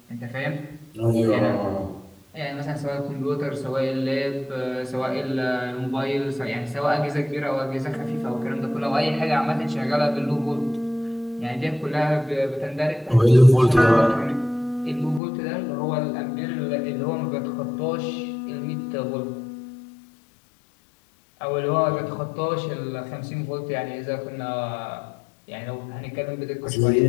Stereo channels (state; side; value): drops out; right; at 15.2 s